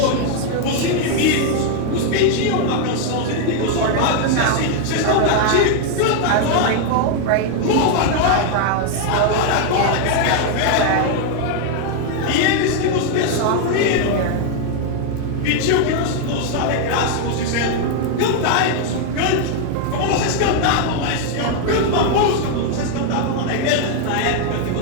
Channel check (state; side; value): different; both; correlation 0.00